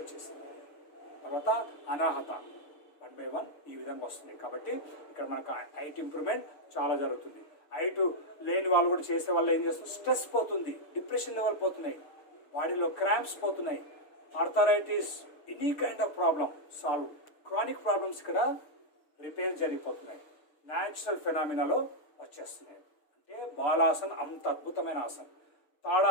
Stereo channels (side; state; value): right; late; 6.6 ms